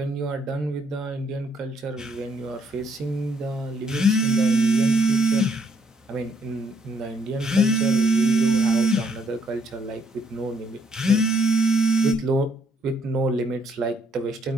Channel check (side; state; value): both; normal; correlation 0.69